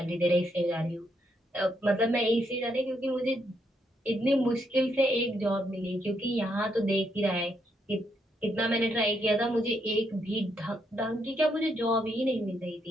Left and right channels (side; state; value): both; normal; correlation 0.77